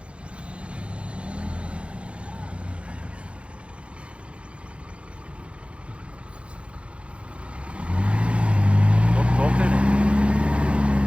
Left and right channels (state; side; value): late; left; 0.060 ms